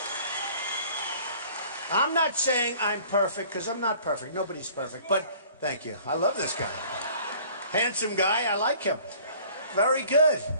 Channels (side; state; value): both; inverted; correlation -0.52